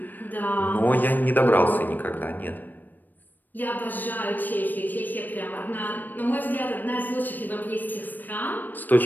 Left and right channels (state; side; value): late; right; 0.089 ms